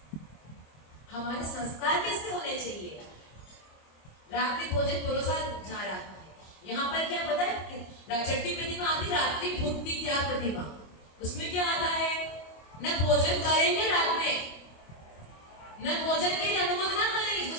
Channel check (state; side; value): late; right; 25 ms